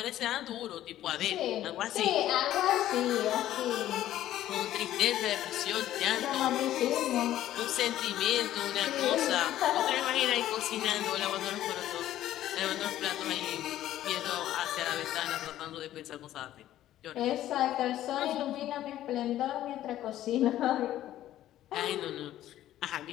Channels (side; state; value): right; quieter; 13.1 dB